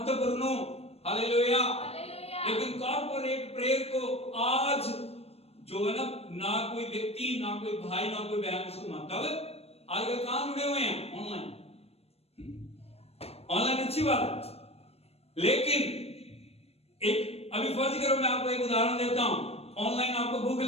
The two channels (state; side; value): late; right; 0.29 ms